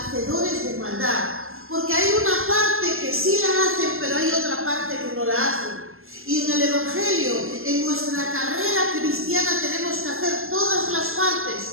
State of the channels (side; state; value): left; late; 0.61 ms